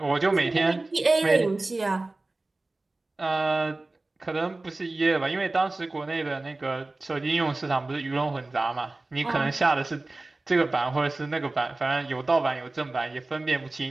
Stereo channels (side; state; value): left; quieter; 3.0 dB